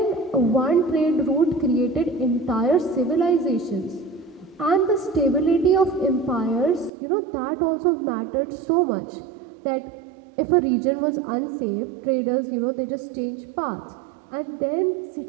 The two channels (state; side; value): drops out; left; at 6.9 s